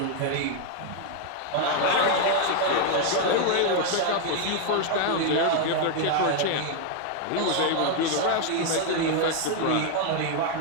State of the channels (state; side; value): different; both; correlation 0.00